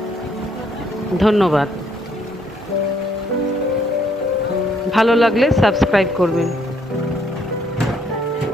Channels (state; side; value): normal; both; correlation 0.69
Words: ধন্যবাদ। ভালো লাগলে সাবস্ক্রাইব করবেন।